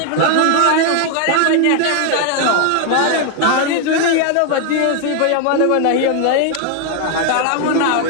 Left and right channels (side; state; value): both; different; correlation 0.00